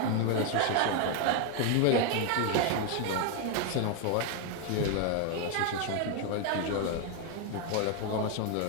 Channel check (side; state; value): both; different; correlation 0.01